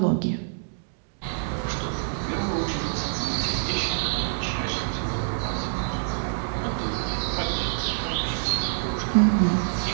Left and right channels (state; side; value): silent; left; digital silence